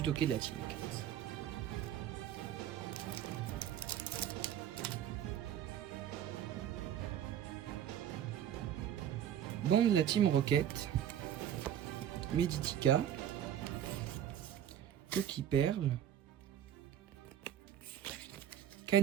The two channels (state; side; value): quieter; left; 10.2 dB